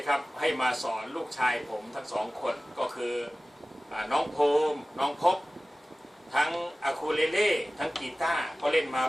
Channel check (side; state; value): both; normal; correlation 0.97